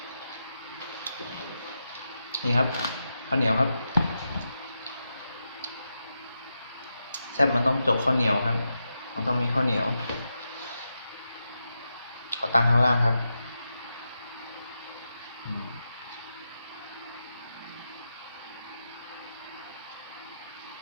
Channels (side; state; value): both; inverted; correlation -0.87